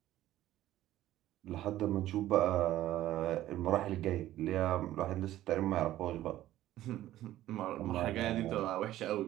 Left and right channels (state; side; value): quieter; left; 14.1 dB